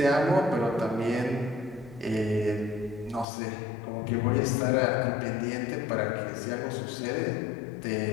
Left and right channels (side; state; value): right; drops out; at 3.2 s